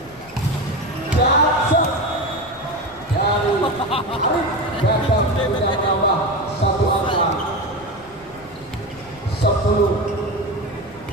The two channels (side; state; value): left; noise; rumble, 25 dB below the sound